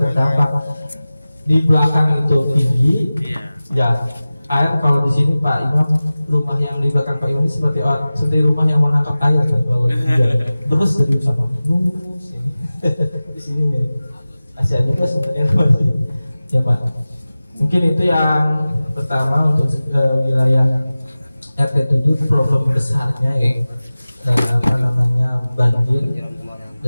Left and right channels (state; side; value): inverted; both; correlation -0.97